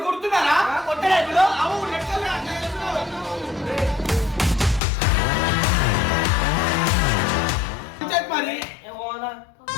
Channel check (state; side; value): drops out; right; at 4.8 s